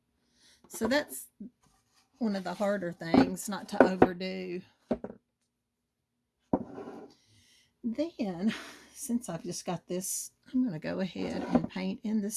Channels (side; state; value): both; identical; correlation 1.00